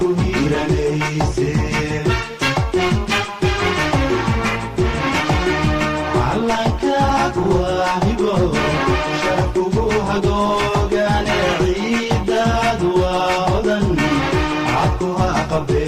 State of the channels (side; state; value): both; identical; correlation 1.00